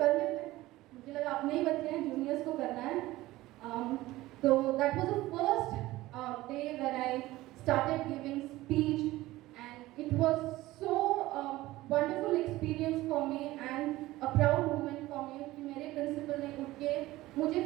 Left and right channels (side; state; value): left; quieter; 17.5 dB